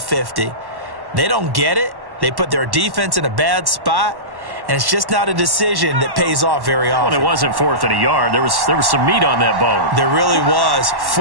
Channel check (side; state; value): left; late; 1.1 ms